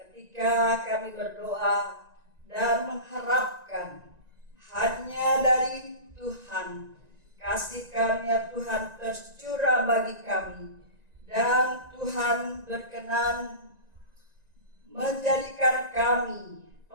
kami berdoa dan mengharapkan hanya dari Tuhan, kasih karunia Tuhan tercurah bagi kami, dan Tuhan berkenan menjadikan kami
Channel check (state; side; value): late; left; 1.9 ms